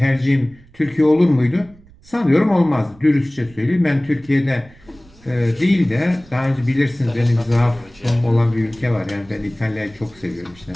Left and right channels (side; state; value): right; noise; rumble, 25 dB below the sound